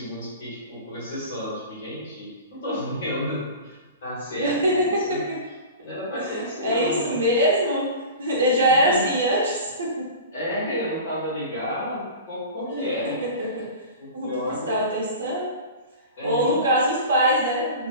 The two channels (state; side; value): inverted; both; correlation -0.34